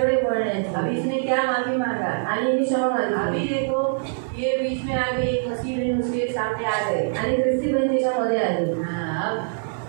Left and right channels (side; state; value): left; silent; digital silence